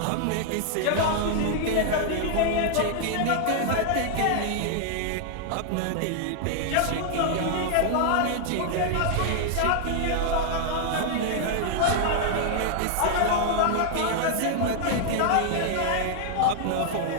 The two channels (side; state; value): both; different; correlation -0.01